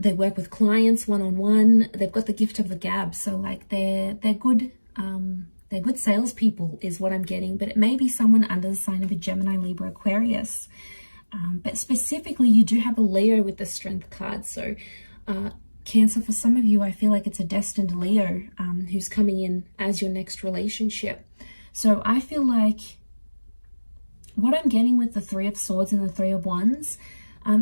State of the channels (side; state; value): both; inverted; correlation -1.00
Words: work with clients one-on-one. They've got the gift of the gab, so like they're good salespeople is what I'm getting. But it may be someone under the sign of a Gemini, Libra, Aquarius. But specifically, you do have a Leo with the Strength card. So Cancer, for some of you, I feel like it's a destined Leo who's coming in as your next relationship. So I feel like what I'm getting with the Three of Swords and the Three of Wands,